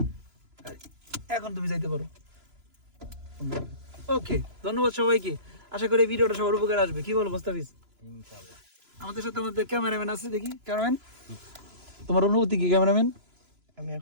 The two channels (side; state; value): left; late; 3.0 ms